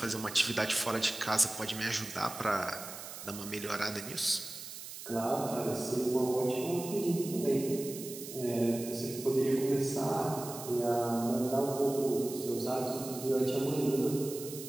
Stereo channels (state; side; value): noise; right; hiss, 11 dB below the sound